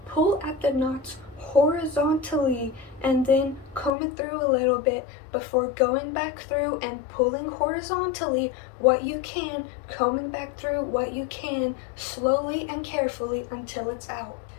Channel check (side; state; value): right; drops out; at 3.9 s